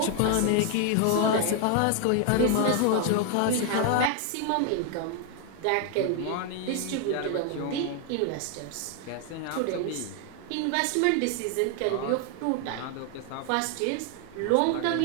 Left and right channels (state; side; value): different; both; correlation 0.00